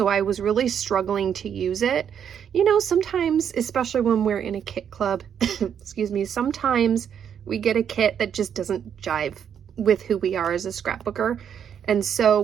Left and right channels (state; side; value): quieter; left; 8.4 dB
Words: I was really struggling to use it. You know, sometimes, especially when we're in a kit club, excuse me, sometimes we get a kit that just doesn't jive with who we are as a scrapbooker, and so